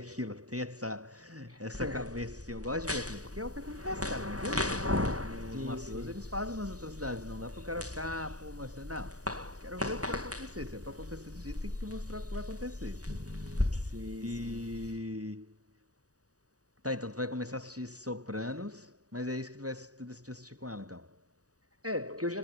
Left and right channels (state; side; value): late; left; 0.66 ms